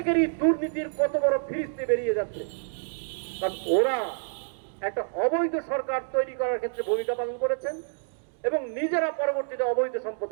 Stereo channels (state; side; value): silent; left; digital silence